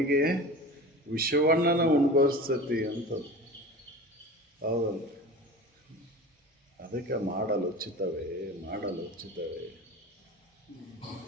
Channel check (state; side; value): normal; both; correlation 0.35